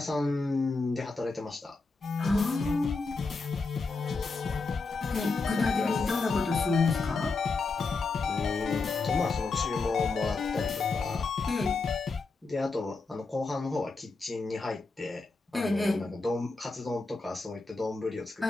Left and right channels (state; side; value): quieter; right; 4.0 dB